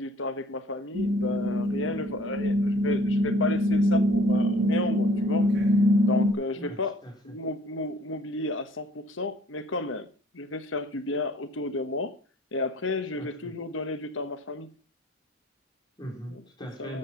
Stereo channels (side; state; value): both; normal; correlation 0.55